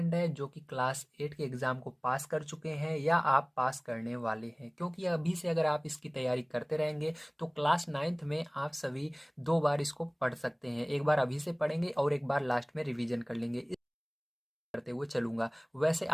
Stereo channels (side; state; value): both; identical; correlation 1.00